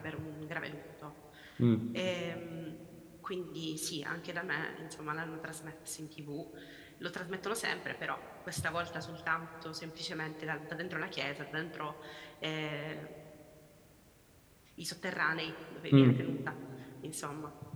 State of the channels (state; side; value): identical; both; correlation 1.00